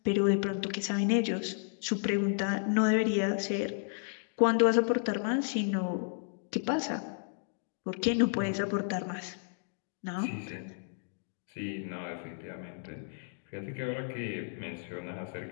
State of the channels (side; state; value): right; silent; digital silence